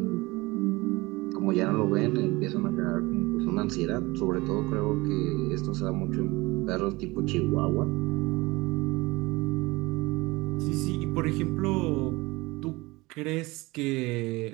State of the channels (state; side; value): quieter; left; 22.3 dB